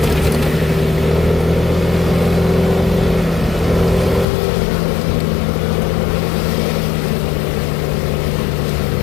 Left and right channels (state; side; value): drops out; right; at 4.2 s